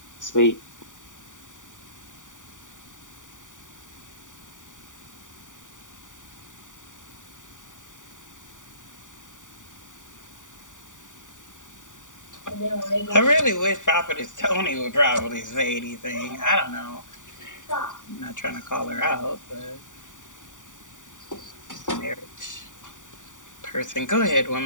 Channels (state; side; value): late; right; 0.87 ms